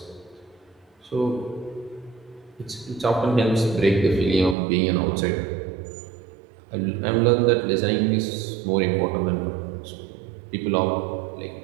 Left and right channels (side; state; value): left; drops out; at 4.5 s